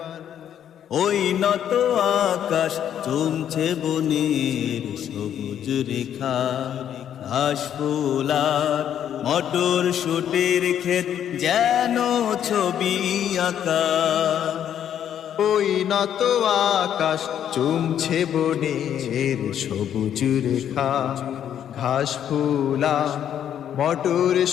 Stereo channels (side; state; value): right; quieter; 9.8 dB